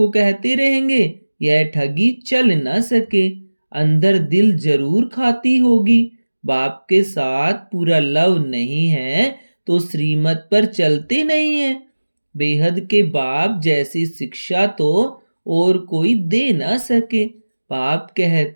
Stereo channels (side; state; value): both; inverted; correlation -1.00